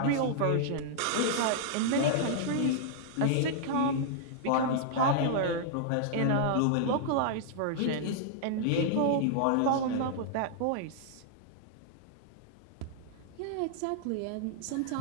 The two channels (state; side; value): different; both; correlation -0.01